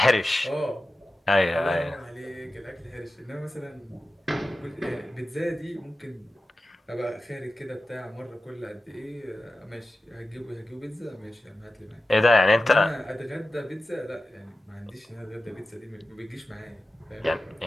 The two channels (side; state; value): both; normal; correlation 0.94